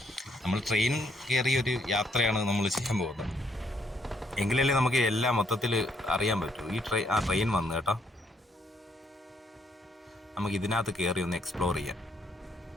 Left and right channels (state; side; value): normal; both; correlation 0.71